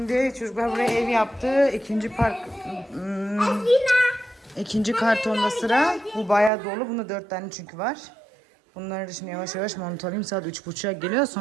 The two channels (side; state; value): left; drops out; at 6.5 s